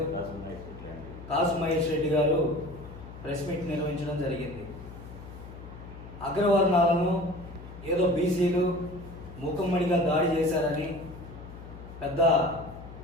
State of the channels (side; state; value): left; noise; hum, 14 dB below the sound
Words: కాసు మహేష్ రెడ్డి గారు ప్రెస్ మీట్ నిర్వహించడం జరిగింది. అగ్రవర్ణాలను ఏదో బీసీలు మూకమ్మడిగా దాడి చేశారని పెద్ద